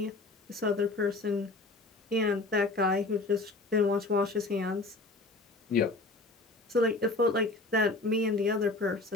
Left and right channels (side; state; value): right; quieter; 3.2 dB